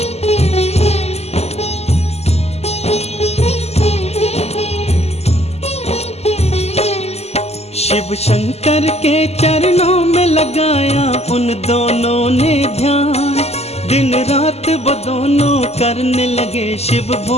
शिव शंकर के चरणों में लगाया उन दोनों ने ध्यान। दिन रात वो दोनों करने लगे शिव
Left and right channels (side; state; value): right; late; 0.30 ms